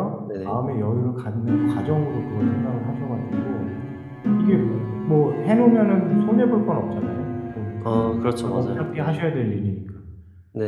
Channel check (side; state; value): both; identical; correlation 1.00